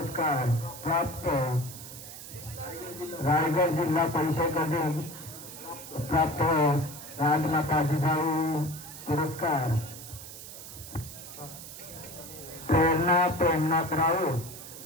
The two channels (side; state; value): right; noise; hiss, 13 dB below the sound